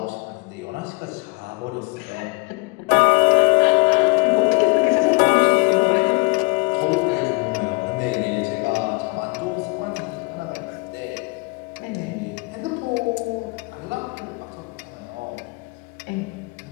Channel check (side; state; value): right; quieter; 28.0 dB